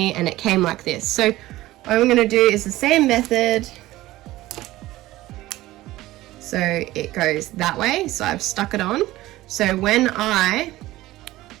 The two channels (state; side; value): quieter; left; 17.0 dB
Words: and it came like this. So what I'm going to do is the same method. So it goes that way. So I've stuck it on. So when I